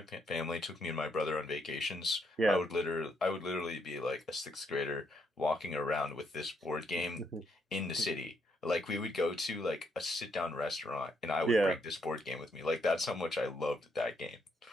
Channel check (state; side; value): normal; both; correlation 0.75